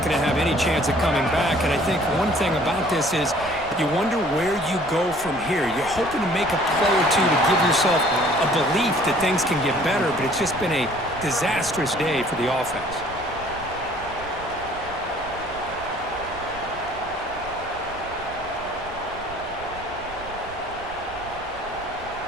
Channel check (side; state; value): right; noise; rumble, 17 dB below the sound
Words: going to have any chance of coming back. And I think one thing about this is you wonder where you go from here. You're hoping to make a play or two to give yourself a belief that things can get better, but it's just been a disastrous day for the offense.